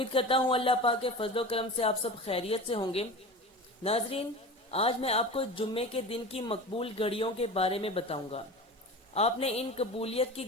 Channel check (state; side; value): normal; both; correlation 0.32